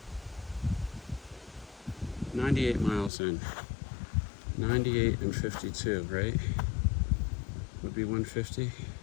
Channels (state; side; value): drops out; right; at 3.1 s